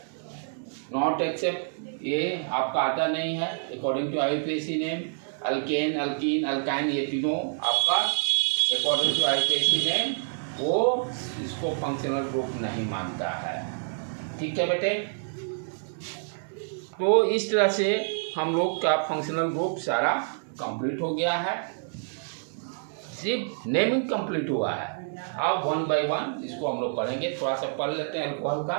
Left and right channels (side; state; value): left; silent; 60 dB below the other